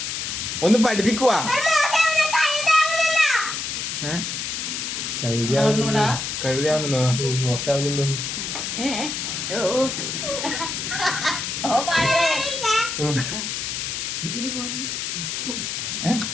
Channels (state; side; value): noise; left; hiss, 3 dB below the sound